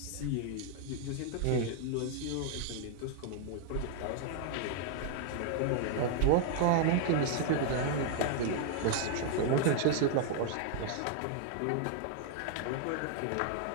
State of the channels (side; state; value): both; different; correlation 0.00